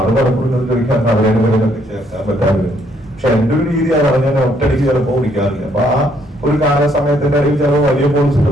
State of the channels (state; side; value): normal; both; correlation 0.69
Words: പലപ്പോഴും ചോദിക്കാൻ അവരെ ചേർക്കാൻ പറ്റാറില്ല. പക്ഷെ എന്റെ ഒരു രീതി അതാണ്, ഞാൻ ഒറ്റയടിക്ക് ചിലപ്പോൾ വിളിക്കാറില്ല. അപ്പൊ ആ ഒരു കാല സമയത്തിന്റെ ഇടയിൽ ചിലപ്പോൾ വലിയ പോളിസിൽ